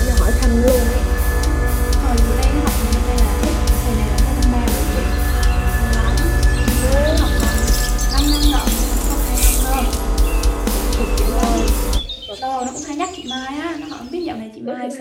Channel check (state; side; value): identical; both; correlation 1.00